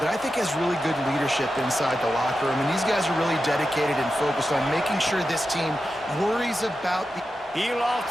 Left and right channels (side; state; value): both; normal; correlation 0.90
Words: I think has really good leadership inside the locker room. And these guys are really dedicated and focused on making sure this team worries about the... He